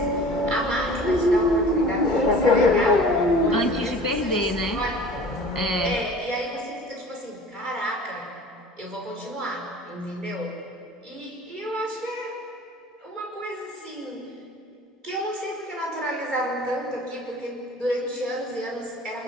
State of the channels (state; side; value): normal; both; correlation 0.43